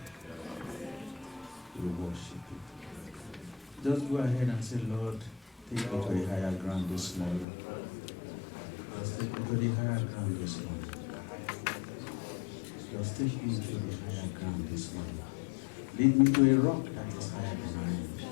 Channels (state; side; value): drops out; right; at 7.5 s